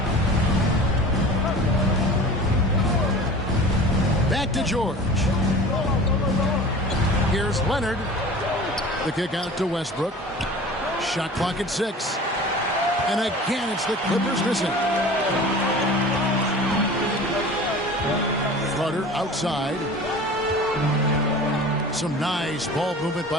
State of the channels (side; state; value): both; normal; correlation 0.39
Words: Back to George. Here's Leonard. The kick out to Westbrook. Shot clock at 6. And again, it's the Clippers missing. Carter outside. Some nice ball movement